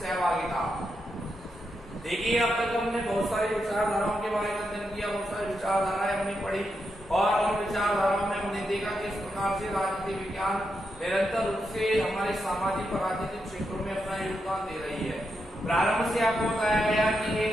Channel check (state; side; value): normal; both; correlation 0.84